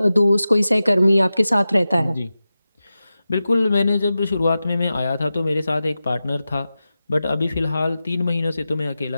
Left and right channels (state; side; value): inverted; both; correlation -0.93